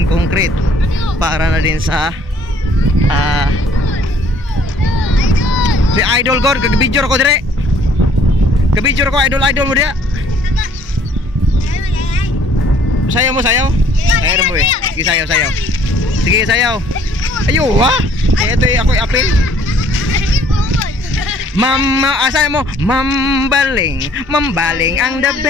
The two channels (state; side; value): normal; both; correlation 0.59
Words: concrete. Para na din sa si Idol God, kag-video ko dire. Kag-video ko idol mo dia. Sayaw mo, sayaw. Sayaw mo eh. Sige, sayaw. Sige, sayaw. Ayo, ha? Ito yung ako'y apel. Sayaw mo. Mambaling ang the